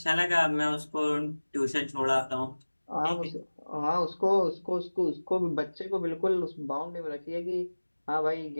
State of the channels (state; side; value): inverted; both; correlation -1.00